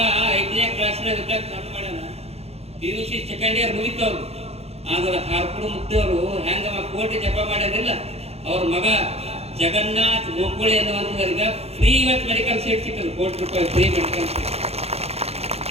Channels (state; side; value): late; left; 0.30 ms